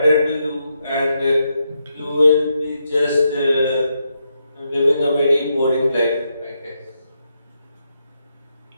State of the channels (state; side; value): inverted; both; correlation -0.82